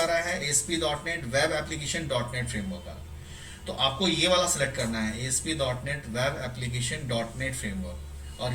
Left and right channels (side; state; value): both; identical; correlation 1.00